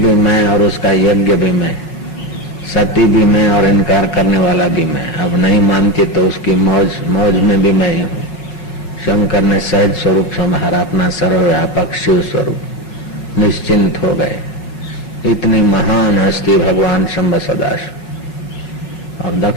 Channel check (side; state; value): right; late; 5.9 ms